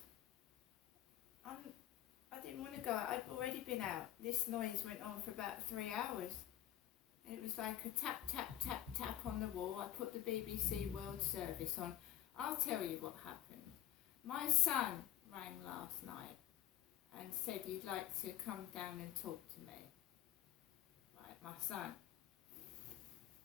didn't want to go out. I'd already been out. This noise went on for about 3 hours. It was like a tap, tap, tap, tap on the wall. I put the BBC World Service on. I'll tell you what happened. My son rang last night and said he'd like to come down and talk to me. Right, my son.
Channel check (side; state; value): right; quieter; 12.7 dB